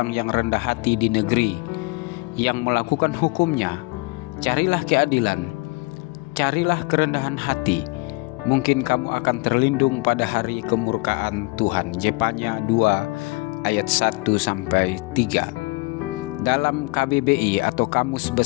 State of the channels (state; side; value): quieter; right; 26.0 dB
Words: yang rendah hati di negeri, yang melakukan hukum-Nya. Carilah keadilan, carilah kerendahan hati, mungkin kamu akan terlindung pada hari kemurkaan Tuhan. Jepanya 2 ayat 1 sampai 3. Dalam KBBI atau Kamus